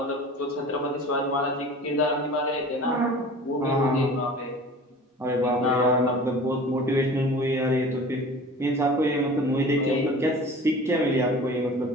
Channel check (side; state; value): both; normal; correlation 0.41